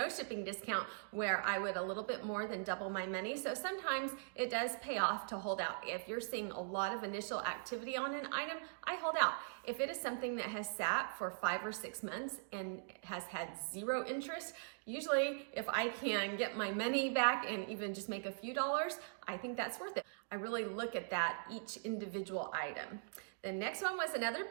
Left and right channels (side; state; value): left; silent; digital silence